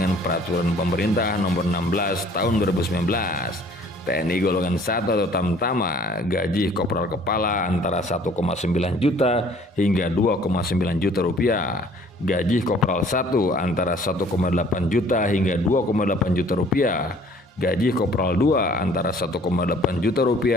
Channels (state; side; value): normal; both; correlation 0.55